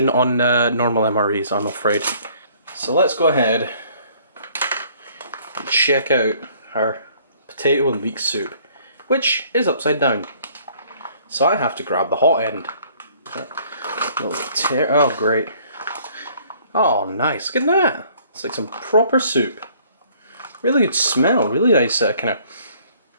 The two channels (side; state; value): both; inverted; correlation -0.59